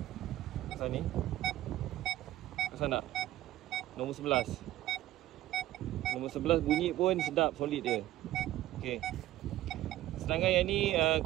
kawasan ni. Kawasan nak nombor 11. Nombor 11 bunyi pun sedap, solid dia. Okey. Sedangkan yang ni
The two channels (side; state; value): left; quieter; 14.7 dB